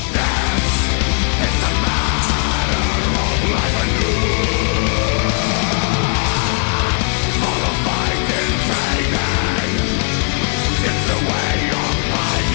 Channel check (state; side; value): quieter; right; 38.7 dB